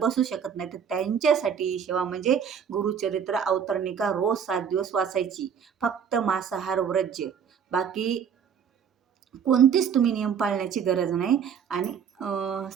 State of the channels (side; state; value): left; quieter; 7.5 dB